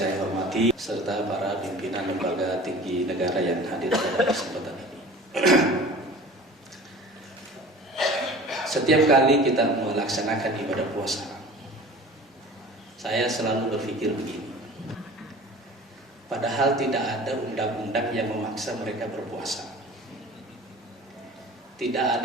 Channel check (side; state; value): both; normal; correlation 0.42